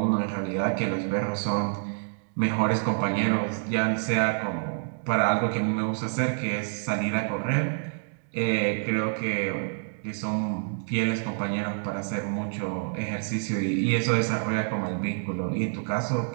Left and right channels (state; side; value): silent; left; digital silence